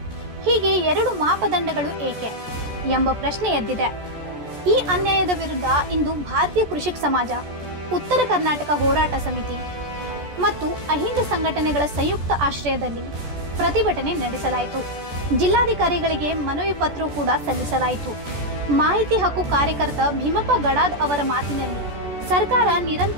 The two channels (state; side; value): late; left; 14 ms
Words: ಹೀಗೆ ಎರಡು ಮಾಪದಂಡಗಳು ಏಕೆ ಎಂಬ ಪ್ರಶ್ನೆ ಎದ್ದಿದೆ. ಈ ಅನ್ಯಾಯದ ವಿರುದ್ಧ ಇಂದು ಭಾರತೀಯ ಕೃಷಿಕ ಸಮಾಜ, ಉತ್ತರ ಕರ್ನಾಟಕ ಹೋರಾಟ ಸಮಿತಿ ಮತ್ತು ಅಹಿಂದ ಸಂಘಟನೆಗಳ ಸಂಯುಕ್ತ ಆಶ್ರಯದಲ್ಲಿ ಪ್ರತಿಭಟನೆ ನಡೆಸಲಾಯಿತು. ಜಿಲ್ಲಾಧಿಕಾರಿಗಳಿಗೆ ಮನವಿ ಪತ್ರ ಕೂಡ ಸಲ್ಲಿಸಲಾಯಿತು. ಮಾಹಿತಿ ಹಕ್ಕು ಕಾರ್ಯಕರ್ತ ಭೀಮಪ್ಪ ಗಡಾದ್ ಅವರ ಮಾತಿನಲ್ಲಿ ಸರ್ಕಾರ